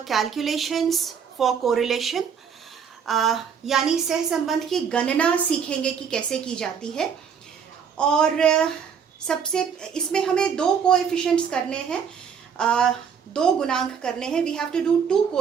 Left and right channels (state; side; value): quieter; left; 7.0 dB